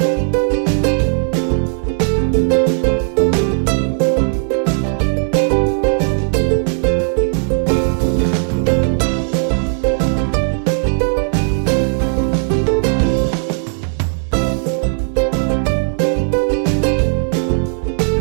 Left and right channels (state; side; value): silent; left; 67 dB below the other